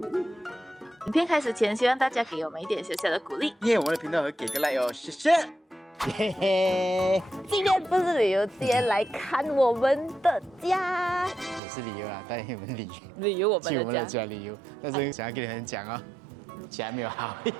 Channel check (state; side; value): drops out; left; at 11.6 s